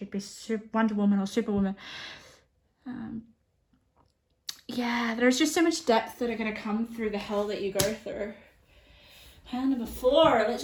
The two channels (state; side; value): identical; both; correlation 1.00